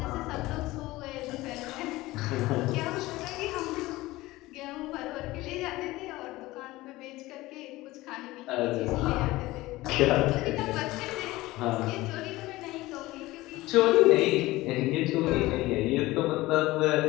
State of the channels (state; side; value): quieter; right; 18.8 dB